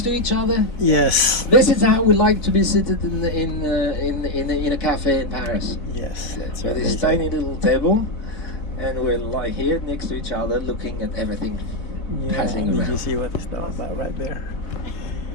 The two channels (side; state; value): right; late; 4.0 ms